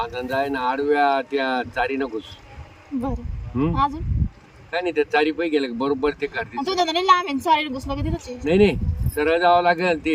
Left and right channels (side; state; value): both; identical; correlation 1.00